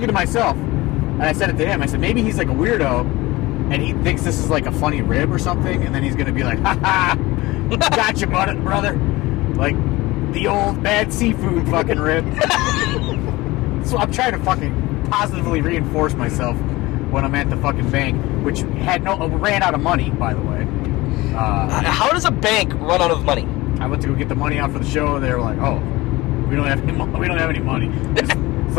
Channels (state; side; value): quieter; right; 20.3 dB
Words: to myself, and I said it to him, I said, maybe he's like a weirdo, and he thinks this is like a funny rib or something, and then he's going to be like, ha-ha, gotcha, brother. Like, the old bad seafood fucking rib. So I'm trying to fucking positively reinforce myself when I'm at the fucking bank, which ran out of money, by the way. How does a bank run out of money? I went to go get the money out for the show, and they were like, "Oh, we don't have any money. It's